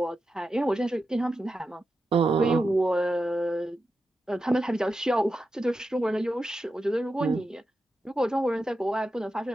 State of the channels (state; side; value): normal; both; correlation 0.89